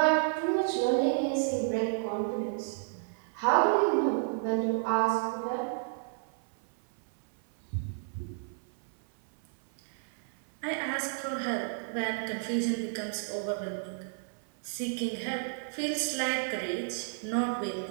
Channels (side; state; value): left; silent; 57 dB below the other